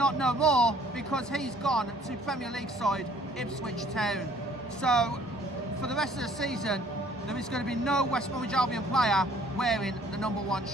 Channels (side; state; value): both; normal; correlation 0.58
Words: no more, because he's gone to Premier League side Ipswich Town. So for the rest of the season, there is going to be no West Bromwich Albion player wearing the number one